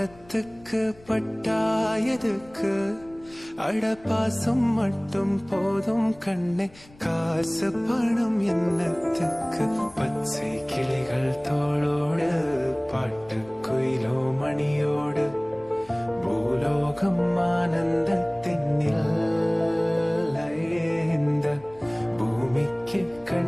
பட்டாயதுக்கு. அட பாசம் மட்டும் போதும் கண்ணே, காசு பணம் என்னத்துக்கு. பச்சை கிளிகள் தோளோடு பாட்டு குயிலோ மணியோடு பூலோகம் ஆனந்தத்தின் இந்த பூமிக்கு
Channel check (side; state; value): left; noise; rumble, 25 dB below the sound